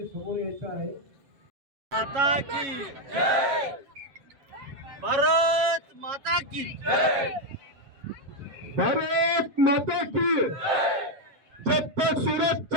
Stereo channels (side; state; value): left; late; 7.3 ms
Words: समोर यायचं आहे। माता की जय, भारत माता की जय, भारत माता की जय। जब तक सूरज